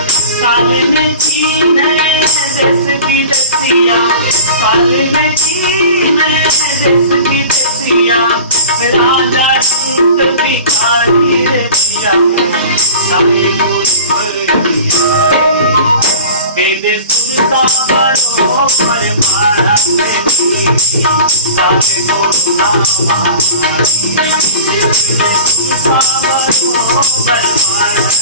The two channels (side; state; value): both; inverted; correlation -0.39